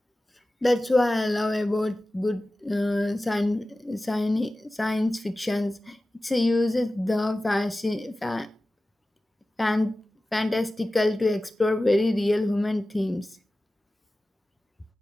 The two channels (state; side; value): normal; both; correlation 0.96